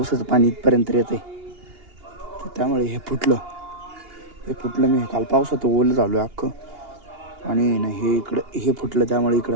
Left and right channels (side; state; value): left; late; 2.8 ms